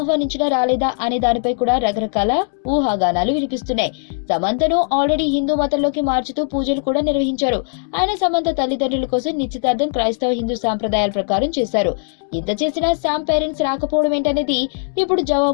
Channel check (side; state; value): right; silent; digital silence